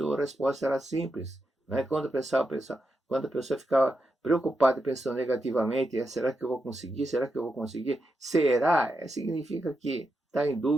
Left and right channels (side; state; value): both; normal; correlation 0.86